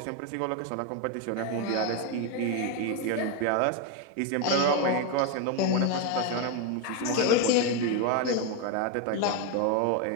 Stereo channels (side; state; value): both; different; correlation 0.02